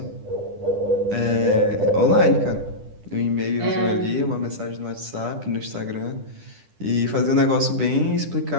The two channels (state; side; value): late; left; 10 ms